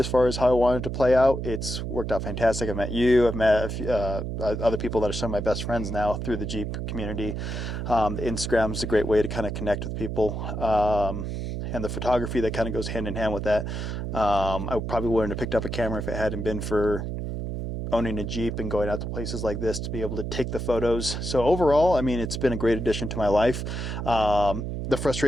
far as how I wanted to play out, it's worked out fantastic. I've met you. I've met a few, other people that are some of my best friends now through the Jeep community. Instagram is a great way to kind of connect with people. And the photography that kind of goes hand in hand with that. I probably wouldn't have picked up a camera if it hadn't been for owning a Jeep and going out to places like this to be able to take the photos. So overall, I mean, it's been a great addition to my life. The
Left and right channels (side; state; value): right; noise; hum, 4 dB below the sound